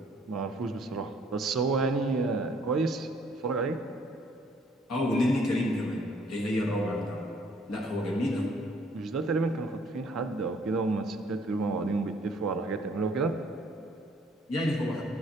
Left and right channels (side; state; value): both; normal; correlation 0.62